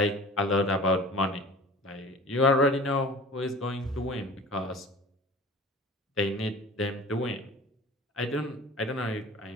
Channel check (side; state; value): both; normal; correlation 0.43